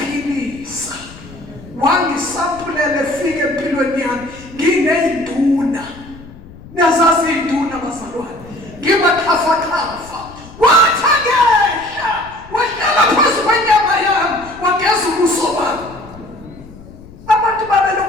wangisampulele fike empilweni yami ngineyinduna niyazazi induna bazalwane ngibaxhafaxhafa wathi angehla wahlala phezu kwenyama yami wageza ubuso bami abantu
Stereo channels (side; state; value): left; noise; rumble, 19 dB below the sound